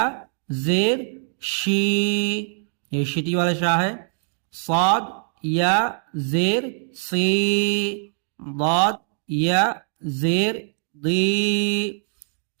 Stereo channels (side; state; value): left; silent; 63 dB below the other